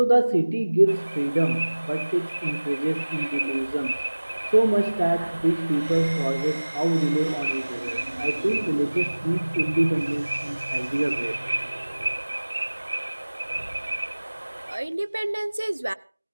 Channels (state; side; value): inverted; both; correlation -1.00